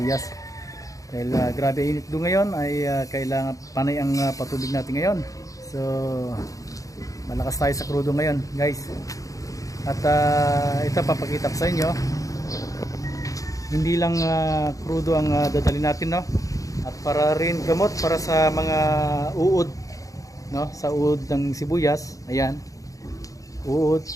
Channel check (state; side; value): late; right; 0.16 ms